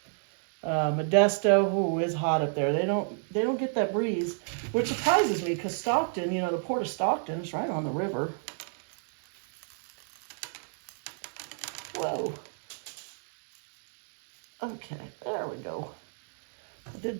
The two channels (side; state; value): left; silent; digital silence